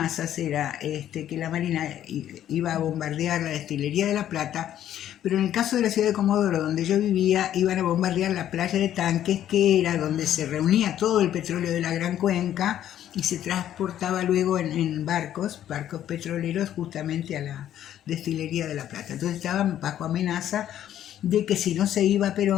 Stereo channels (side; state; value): right; quieter; 11.3 dB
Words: era que la Marina iba a bombardear la destilería de La Plata, pero en el caso de la ciudad de Comodoro, donde yo vivía, iban a bombardear la playa de Tanques, que era donde se reunía todo el petróleo de la Gran Cuenca y se transportaba luego en barcos petroleros justamente a la destilería de La Plata. Entonces estaban bajo amenaza de que si no se iba a